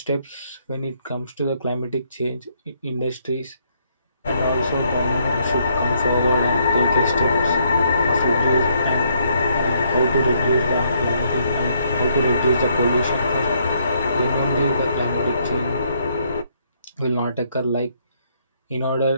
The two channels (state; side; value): inverted; both; correlation -0.71